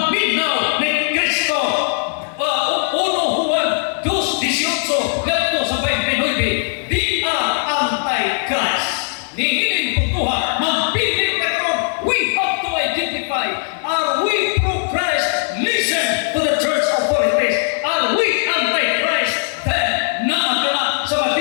ni Kristo. Uno Juan 2:18, lepto sa 29, di na anti-Christ. Nihiling putuha, magbiling na karon, we have to identify, are we pro-Christ? Listen to the church authorities. Are we anti-Christ? Then, nakakala sa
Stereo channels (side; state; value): right; silent; 56 dB below the other